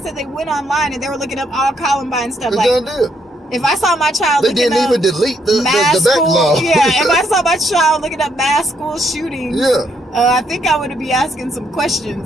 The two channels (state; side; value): normal; both; correlation 0.74